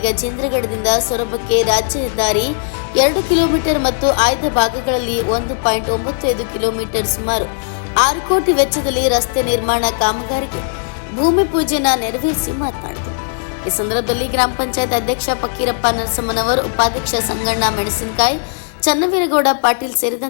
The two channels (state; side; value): silent; right; digital silence